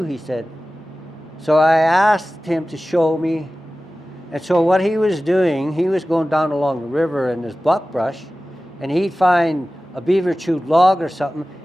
he said. So I asked him to show me. And so what he was doing, he was going down along the river in this buckbrush, and he'd find a beaver chewed log or something.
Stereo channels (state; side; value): normal; both; correlation 0.96